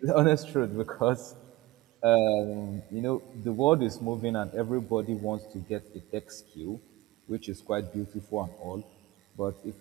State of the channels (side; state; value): left; quieter; 18.9 dB